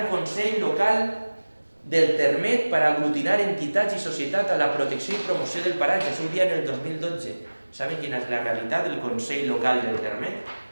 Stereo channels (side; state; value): both; inverted; correlation -1.00